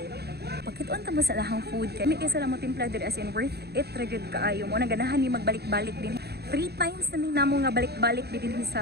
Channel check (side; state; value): left; late; 0.47 ms